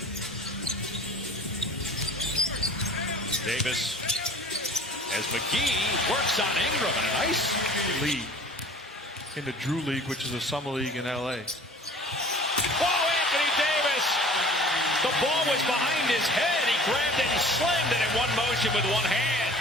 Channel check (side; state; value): both; normal; correlation 0.46